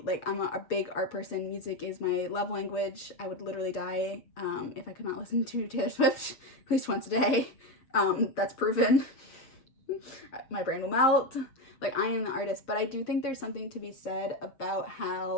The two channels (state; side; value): late; right; 7.1 ms